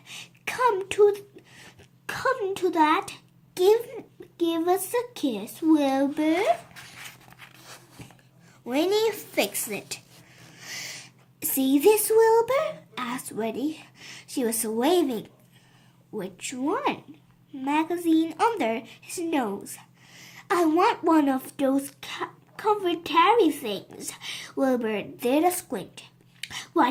Come to that. Give us a kiss, Wilbur. Winnie fixed it. See this, Wilbur? Asked Winnie. She was waving. Which one? Magazine under his nose. I want one of those comfortary things. Wilbur did a squint.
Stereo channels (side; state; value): both; identical; correlation 1.00